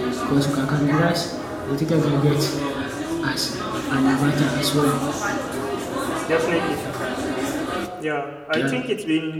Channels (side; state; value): both; identical; correlation 1.00